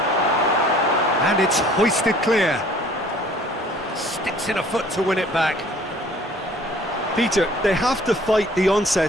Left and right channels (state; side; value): normal; both; correlation 0.53